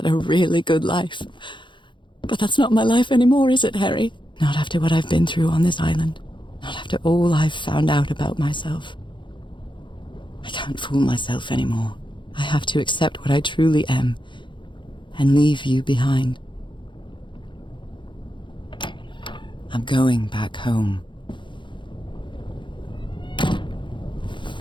a really good life. But that's not my life anymore, is it, Harry? Not after what I've been through on this island. Not after all I've found out about myself. I can't fool myself anymore. I have to accept what I truly am and leave you behind. I'm going back home.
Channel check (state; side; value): late; right; 0.23 ms